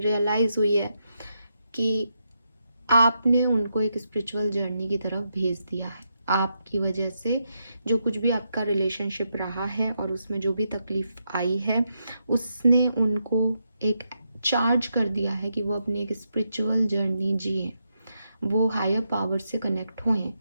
हुई है कि आपने उनको एक स्पिरिचुअल जर्नी की तरफ भेज दिया है। आपकी वजह से जो कुछ भी आपका रिलेशनशिप रहा है और उसमें जो भी तकलीफ आई है, उसने उनको एक चार्ज कर दिया है कि वो अपनी एक स्पिरिचुअल जर्नी जिए, वो हायर पावर से कनेक्ट होएं,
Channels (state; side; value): inverted; both; correlation -0.82